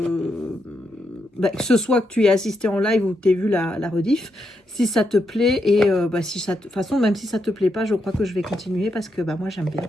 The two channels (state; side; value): normal; both; correlation 0.81